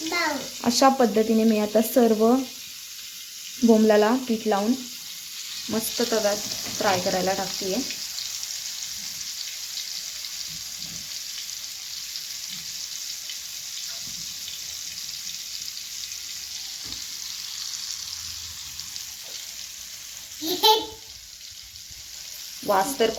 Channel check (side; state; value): both; identical; correlation 1.00